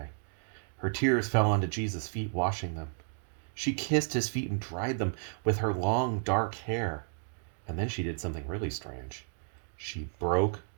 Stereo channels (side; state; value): left; silent; digital silence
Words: Her tears fell onto Jesus' feet, washing them. She kissed his feet and dried them with her long dark hair. And then she did something really strange. She broke